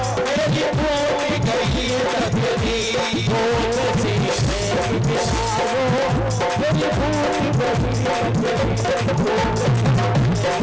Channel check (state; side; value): identical; both; correlation 1.00